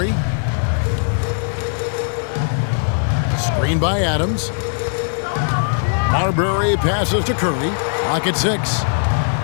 Screen by Adams. Marbury passes to Curry. Clock at 6.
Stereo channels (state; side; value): silent; right; digital silence